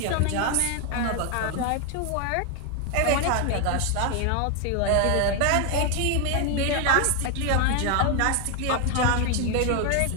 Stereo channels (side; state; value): both; different; correlation 0.01